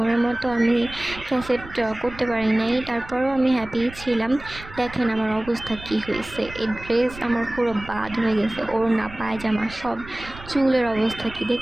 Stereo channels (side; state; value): right; noise; rumble, 16 dB below the sound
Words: মতো আমি ক্যাসেট করতে পারি নাই, তারপরেও আমি হ্যাপি ছিলাম। দেখেন আমার অবস্থা কি হয়েছে, এই ড্রেস আমার পুরো বাদ হয়ে গেছে, ওড়না পায়জামা সব, চুলের অবস্থা কি